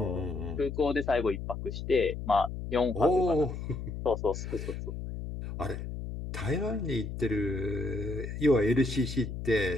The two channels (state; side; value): noise; left; hum, 6 dB below the sound